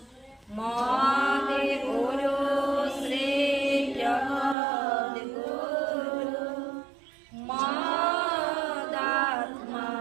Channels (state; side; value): drops out; left; at 4.5 s